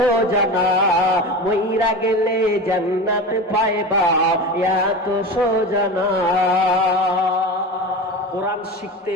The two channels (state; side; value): normal; both; correlation 0.28